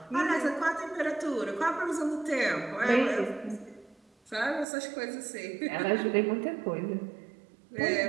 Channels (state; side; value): drops out; left; at 4.7 s